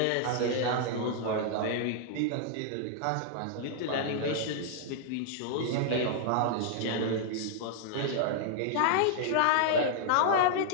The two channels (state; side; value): different; both; correlation -0.01